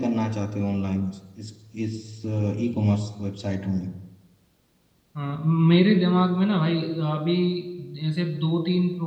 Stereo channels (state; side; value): identical; both; correlation 1.00